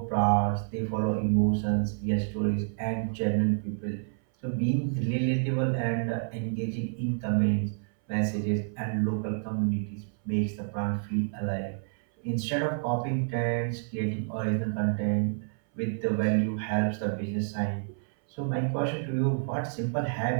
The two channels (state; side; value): silent; left; 59 dB below the other